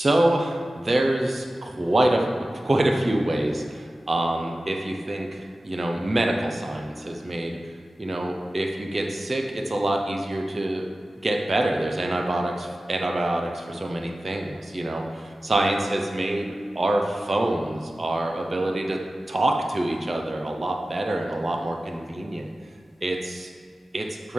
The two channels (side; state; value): both; normal; correlation 0.95